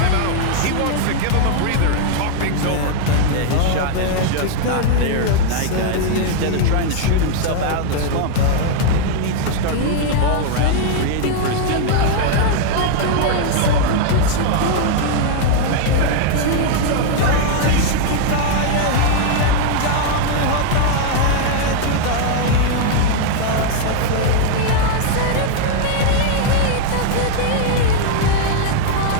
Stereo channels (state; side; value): different; both; correlation 0.00